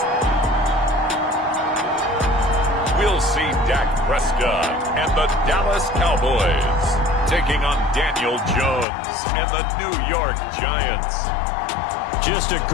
We'll see Dak Prescott and the Dallas Cowboys taking on Daniel Jones and the New York Giants. Just a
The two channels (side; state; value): right; drops out; at 8.8 s